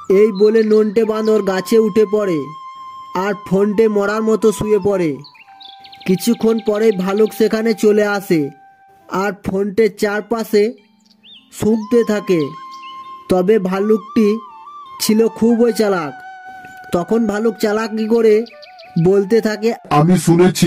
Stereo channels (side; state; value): both; identical; correlation 1.00